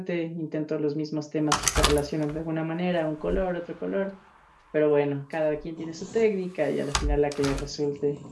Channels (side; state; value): both; identical; correlation 1.00